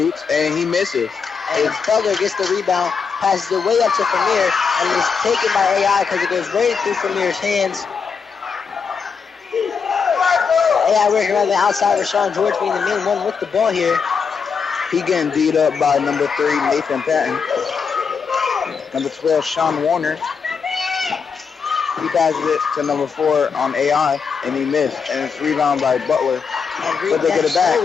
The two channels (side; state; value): right; quieter; 5.9 dB